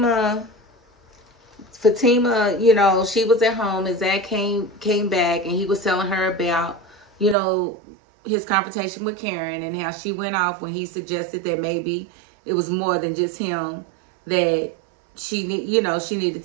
you know, she was at home and Zach came back, and he was telling her about, you know, his confrontation with Karen and how she went off when he suggested that maybe it was more than just him, that she needed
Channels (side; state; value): left; drops out; at 7.4 s